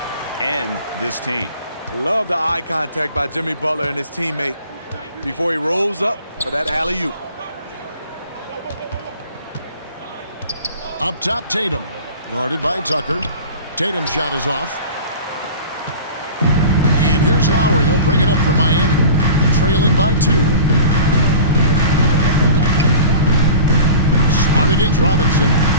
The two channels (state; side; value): inverted; both; correlation -0.39